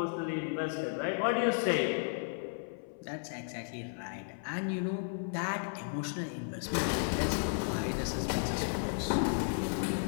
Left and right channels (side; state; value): right; silent; 55 dB below the other